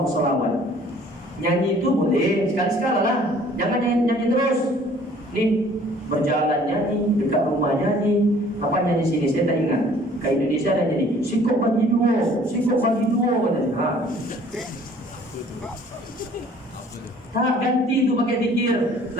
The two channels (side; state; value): both; normal; correlation 0.54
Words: sholawat. Nyanyi itu boleh sekali-sekala lah, jangan nyanyi terus. Nih berjalan nyanyi, dekat rumah nyanyi, apa nyanyi sini saya tak ingat. Ke Indonesia ada nyanyi sikok bagi dua, sikok bagi dua katanya. Tak ganti itu pakai zikir.